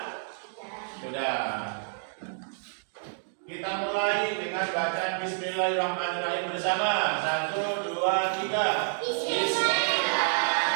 Sudah. Kita mulai dengan bacaan Bismillahirrahmanirrahim bersama. 1, 2, 3.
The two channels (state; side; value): silent; left; digital silence